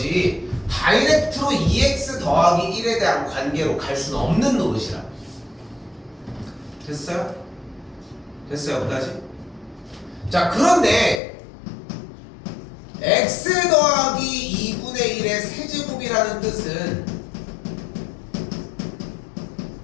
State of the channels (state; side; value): drops out; right; at 11.2 s